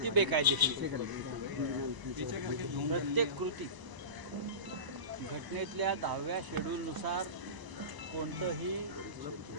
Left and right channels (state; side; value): late; left; 1.0 ms